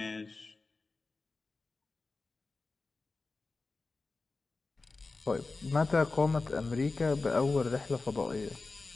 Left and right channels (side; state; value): right; quieter; 3.6 dB